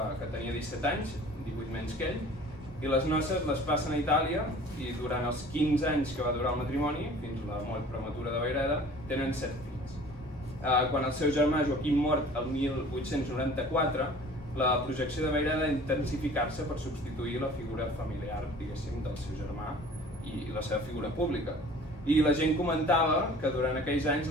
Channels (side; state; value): both; normal; correlation 0.47